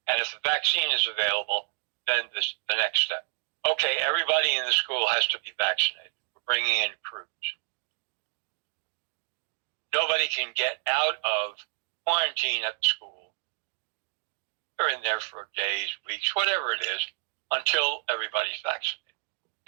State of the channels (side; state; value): left; silent; 58 dB below the other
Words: And if the vaccine is available, then the next step. Okay, everybody in the school has to be vaccinated. We're bringing in crews. Nobody can get out of quarantine at the school. They're in there for days, weeks, whatever it is, until everybody's vaccinated.